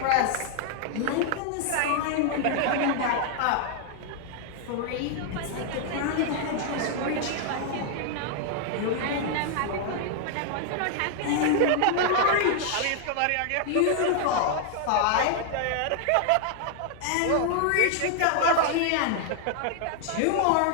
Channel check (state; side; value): different; both; correlation 0.00